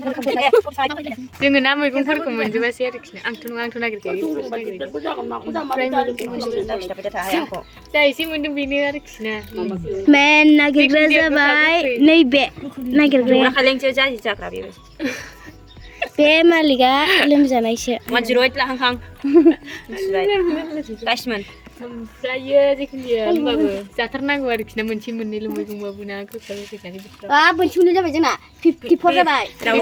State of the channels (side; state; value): both; identical; correlation 1.00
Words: जोङो ना मैगंफोरखौ मोनजोबासै आरोखि आंथ' नागिरखायो जा एसे मोन्दों बेनो आरोखि ना मेन नागिरग्रा जाबाय नैबे नागिरग्राया बे मालिकआ लोमजानायसो 108 लाहां गासिमोन ओमफ्रायो जिखुनु जाया होमबाबो जाथारनांगौ आरोखि ना मोनसे मोननैल' मैगंबाबो ना गोखा गोखैखानि बोथोराव मोनसे मोननै जाबाय जोंना 54 जाबाय